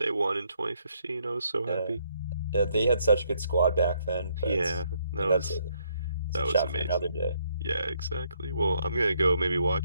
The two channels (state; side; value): inverted; both; correlation -0.72